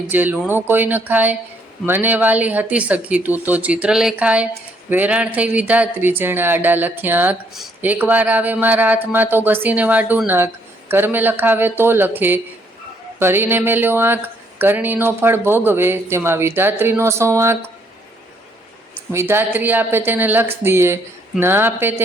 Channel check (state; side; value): normal; both; correlation 0.68